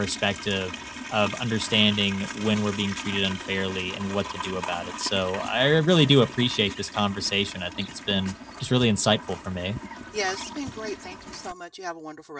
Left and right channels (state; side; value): identical; both; correlation 1.00